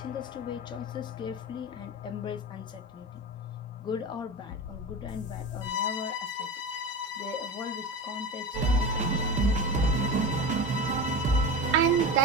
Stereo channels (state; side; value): normal; both; correlation 0.26